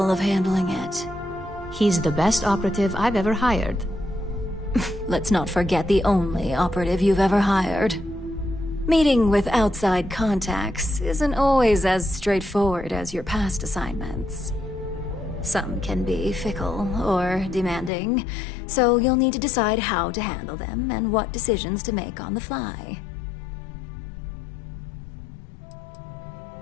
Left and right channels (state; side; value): drops out; right; at 17.9 s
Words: of handling it. He's the best operative I've ever hired. Let's not forget the only operative you've ever hired. Meeting with outside contacts isn't always as straightforward as your past assignments. Some can be fickle or demanding, so you'll need to decide how to handle them and what decisions to make on the fly.